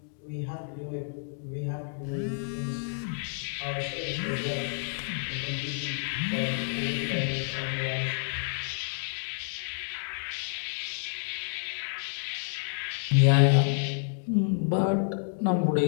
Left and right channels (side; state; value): right; silent; digital silence